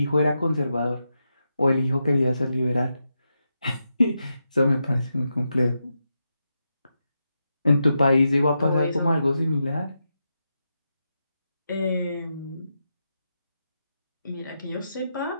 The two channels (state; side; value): inverted; both; correlation -0.86